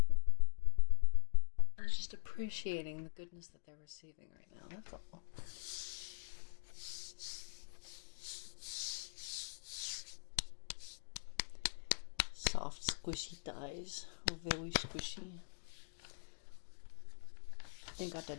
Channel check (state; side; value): silent; right; digital silence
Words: I was just appreciating the goodness that they're receiving right now. That's all. Soft, squishy thighs. Very squishy. They got